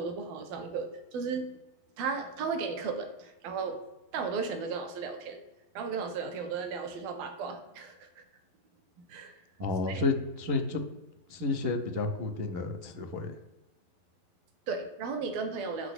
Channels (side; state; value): left; late; 11 ms